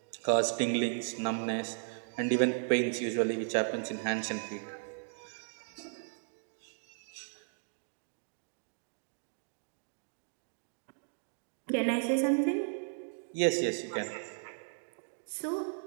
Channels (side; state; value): left; silent; digital silence